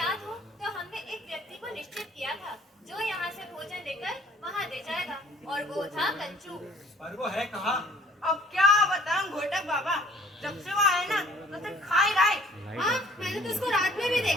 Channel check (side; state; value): both; normal; correlation 0.55